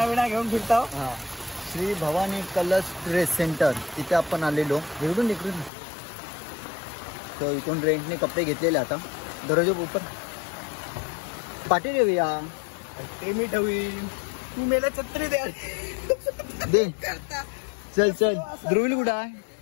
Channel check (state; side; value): drops out; right; at 5.7 s